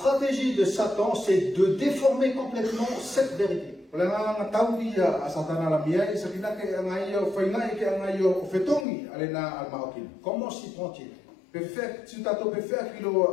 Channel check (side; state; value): right; drops out; at 8.8 s